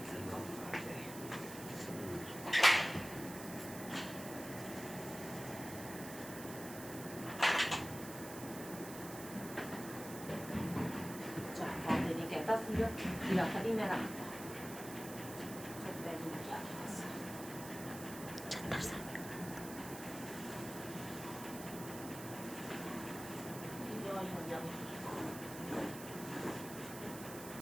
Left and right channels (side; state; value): right; noise; hiss, 11 dB below the sound